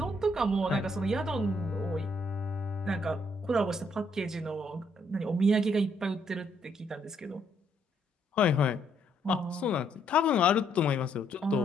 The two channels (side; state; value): both; normal; correlation 0.71